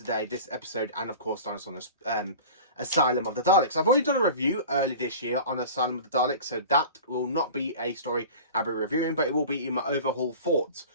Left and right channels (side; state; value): both; inverted; correlation -0.38